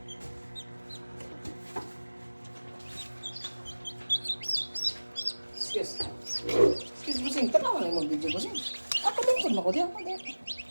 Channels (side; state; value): both; inverted; correlation -1.00